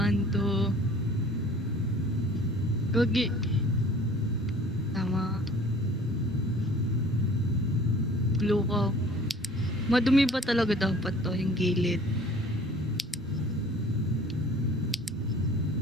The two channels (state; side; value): normal; both; correlation 0.49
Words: 2. Gogi. Tama. Blue ko. Madumi ba talaga dapat to, yung gilid?